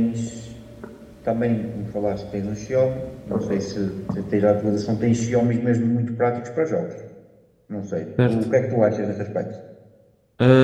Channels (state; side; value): identical; both; correlation 1.00